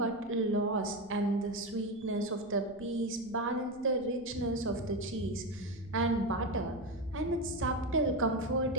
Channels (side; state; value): right; noise; rumble, 25 dB below the sound